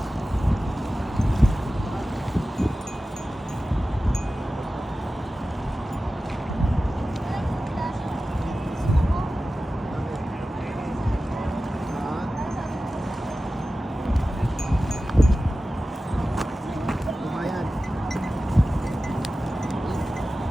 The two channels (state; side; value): normal; both; correlation 0.95